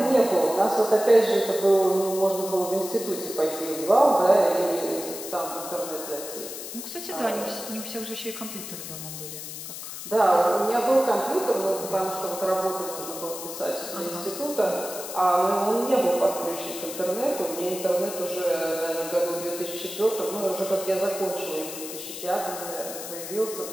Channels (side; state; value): left; noise; hiss, 9 dB below the sound